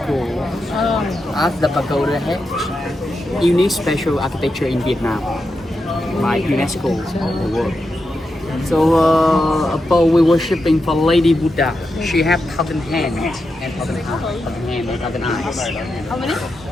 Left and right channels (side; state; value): both; normal; correlation 0.87